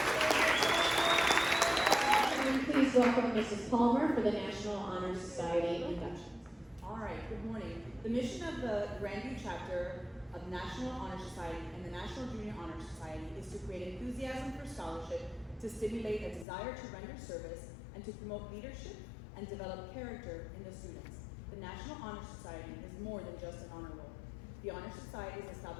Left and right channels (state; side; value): drops out; right; at 16.4 s